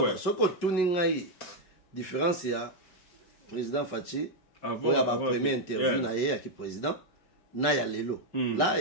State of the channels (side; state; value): right; late; 5.6 ms